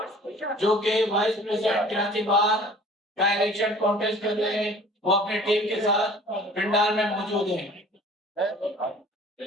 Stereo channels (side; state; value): both; normal; correlation 0.48